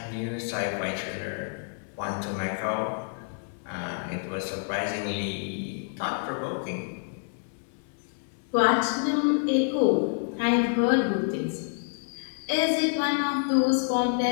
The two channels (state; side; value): silent; right; 58 dB below the other